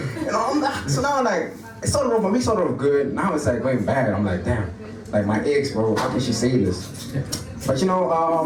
know, so now like, it started off good, now it's like going bad. I'm like, damn, like my ex, bro, how can she say this? But you know,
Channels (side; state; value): both; identical; correlation 1.00